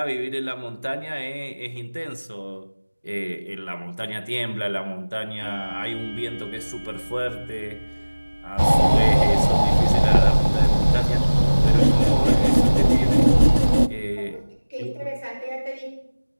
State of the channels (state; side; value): inverted; both; correlation -1.00